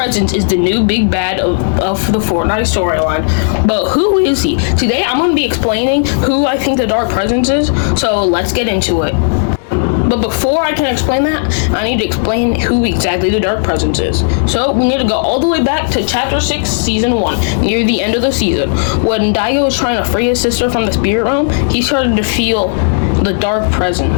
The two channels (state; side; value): silent; right; digital silence